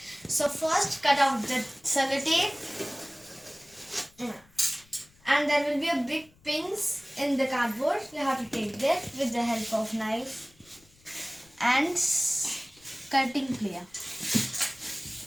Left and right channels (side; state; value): left; noise; rumble, 29 dB below the sound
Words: So first cut out the sellotape and there will be a big pins in the cardboard. You have to take that with the help of knife and cutting plier.